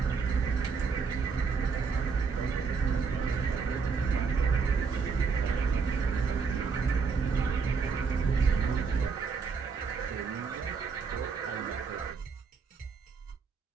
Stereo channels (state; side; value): quieter; left; 5.3 dB